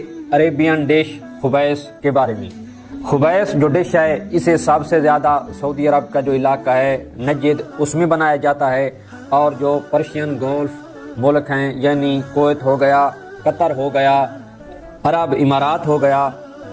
عربین ڈش خبیث کے بارے میں۔ خبیث جو ڈش ہے، اسے سب سے زیادہ سعودی عرب کا جو علاقہ ہے نجد، اس میں بنایا جاتا ہے، اور جو پرشین گولف ملک ہیں یعنی کویت ہو گیا، قطر ہو گیا، عرب امارات ہو گیا،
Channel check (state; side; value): identical; both; correlation 1.00